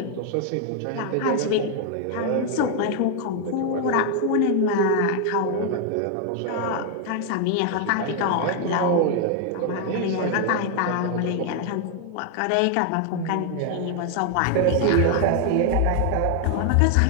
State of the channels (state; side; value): different; both; correlation 0.00